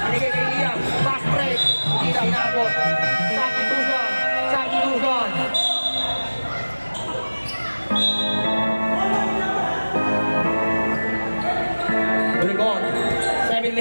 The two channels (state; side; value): inverted; both; correlation -1.00